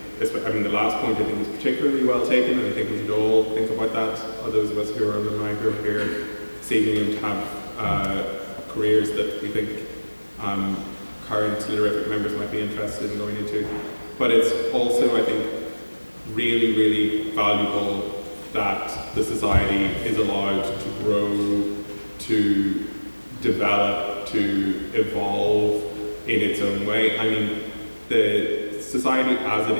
the last point I think is particularly well taken, and I think we should all think about that. Those of us who are alumni who are here this evening and have careers that we think current Literarific members might be interested in going into. But it's also, I think, really, really valuable that the society is allowed to grow, to develop, to evolve in its own way. The society as it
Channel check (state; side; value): inverted; both; correlation -1.00